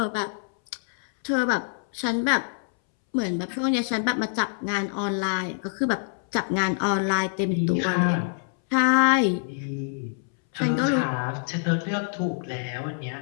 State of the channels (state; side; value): silent; right; 61 dB below the other